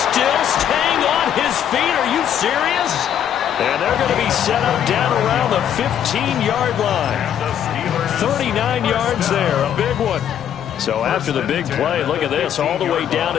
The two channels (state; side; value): quieter; right; 9.6 dB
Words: staying on his feet. Are you serious? And they're going to be set up down around the 15-yard line. 39 yards there. A big one. So after the big play, look at this. All the way down